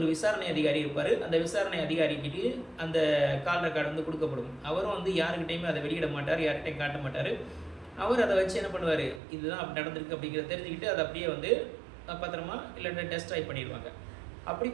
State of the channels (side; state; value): left; drops out; at 9.2 s